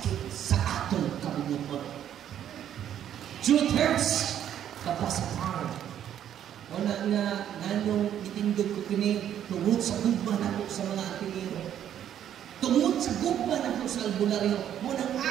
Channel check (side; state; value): left; quieter; 10.2 dB